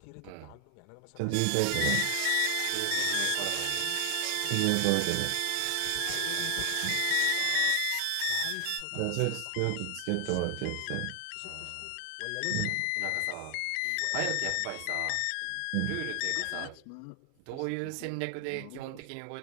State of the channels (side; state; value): both; different; correlation 0.00